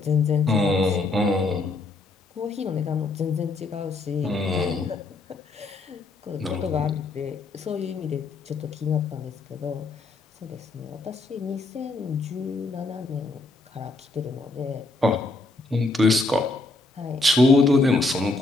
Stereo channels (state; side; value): quieter; right; 3.3 dB